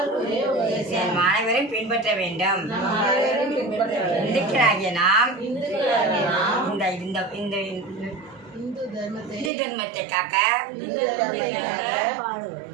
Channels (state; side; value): drops out; left; at 9.5 s